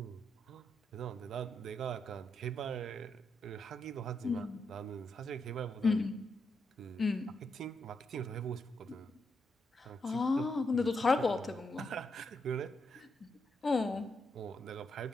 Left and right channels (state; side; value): normal; both; correlation 0.82